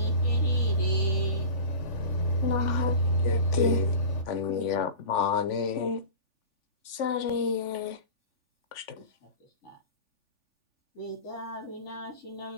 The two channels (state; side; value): late; right; 3.5 ms